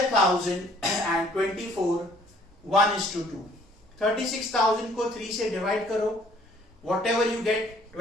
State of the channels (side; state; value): both; normal; correlation 0.59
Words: and 24. 1:2. 36,000 को 3 से divide करो. Whatever you get,